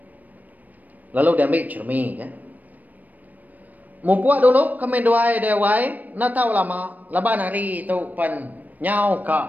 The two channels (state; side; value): late; left; 0.081 ms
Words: Lalu dia ambil cermi ya. Membuat dulu kami doai dewai. Nak tahu lama. Laban hari itu pan nyau